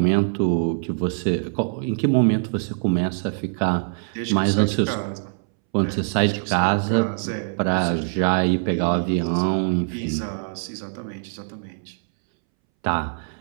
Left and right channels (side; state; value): left; silent; 63 dB below the other